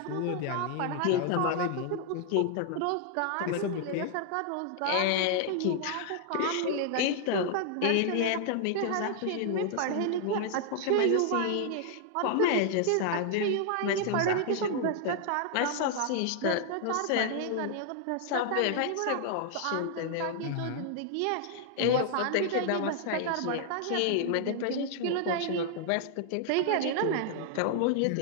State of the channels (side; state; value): both; different; correlation 0.00